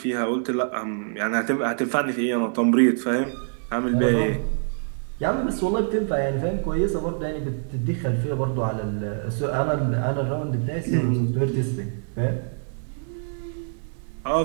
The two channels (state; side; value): silent; left; digital silence